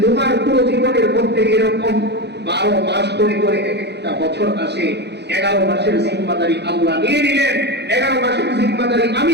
তোমার পুরো জীবনের মধ্যে এরকম 12 মাস করে করে একটা বছর আসে, 11 মাসের জিম্মাদারি আল্লাহ নিয়ে নিলেন, 11 মাসের জিম্মাদারি আমি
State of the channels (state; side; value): late; left; 0.50 ms